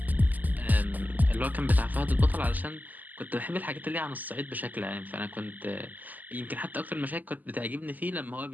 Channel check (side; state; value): left; late; 0.082 ms